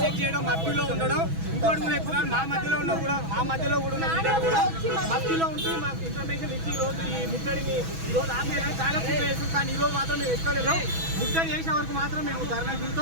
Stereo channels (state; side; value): late; left; 6.1 ms